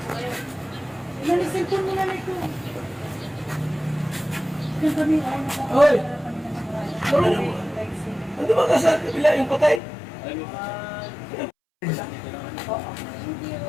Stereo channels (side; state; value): right; drops out; at 9.8 s